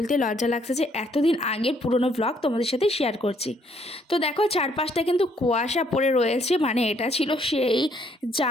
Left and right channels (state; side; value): normal; both; correlation 0.68